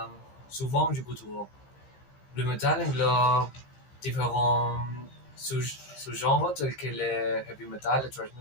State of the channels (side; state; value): right; late; 15 ms